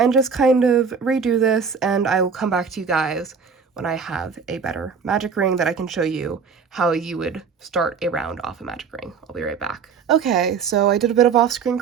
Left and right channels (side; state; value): left; quieter; 6.0 dB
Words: just kind of redo this, and I will come back to you guys when I have a better magic ring that I can show you how you would start a round off a magic ring. I'll be right back. Okay, so I did a bit of off-screen